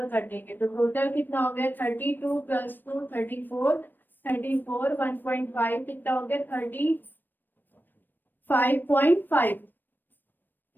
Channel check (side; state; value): right; late; 0.093 ms